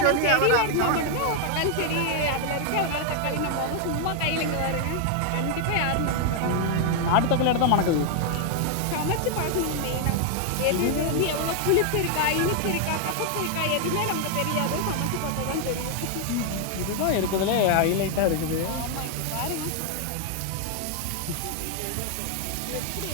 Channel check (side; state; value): both; different; correlation 0.00